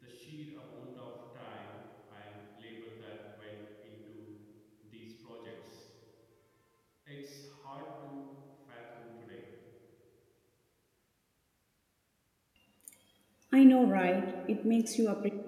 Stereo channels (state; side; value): identical; both; correlation 1.00